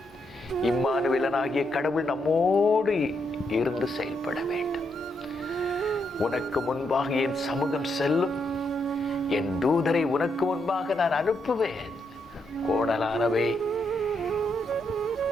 இம்மானுவேலனாகிய கடவுள் நம்மோடு இருந்து செயல்பட வேண்டும். உனக்கு முன்பாக என் சமூகம் செல்லும், என் தூதரை உனக்கு முன்பாக நான் அனுப்புவேன். கோணலானவை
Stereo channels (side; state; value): both; normal; correlation 0.79